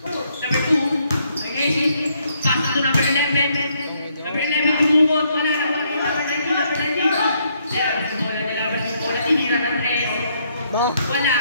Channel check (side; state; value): both; inverted; correlation -0.72